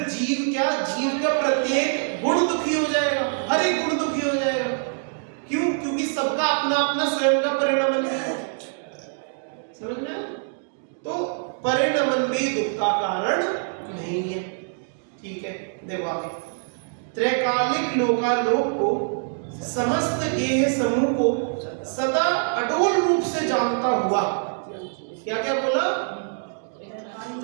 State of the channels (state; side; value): silent; left; digital silence